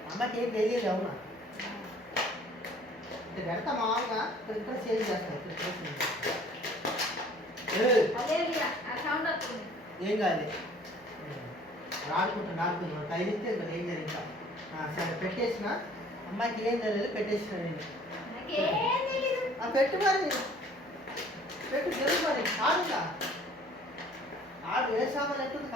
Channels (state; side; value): noise; right; hum, 28 dB below the sound